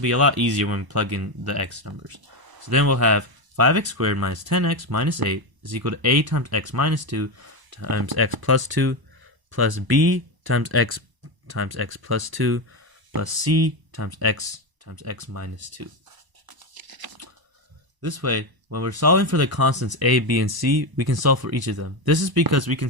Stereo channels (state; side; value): late; left; 1.0 ms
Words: a lot easier when we plug in the x numbers. So then we'll have 5x squared minus 10x minus 8 is equal to a times x minus 2 times x plus 2 plus b times x plus 2 plus c times x minus 2. This way, when we're solving for the constants a, b, and c, we can solve for each of them. This is because we can